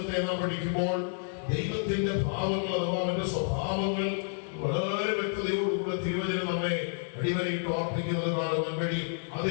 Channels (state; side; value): silent; right; digital silence